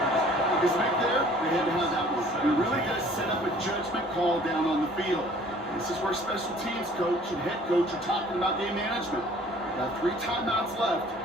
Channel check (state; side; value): normal; both; correlation 0.53